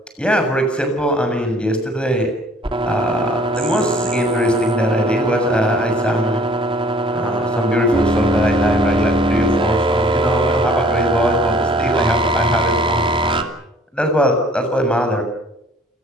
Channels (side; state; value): both; normal; correlation 0.55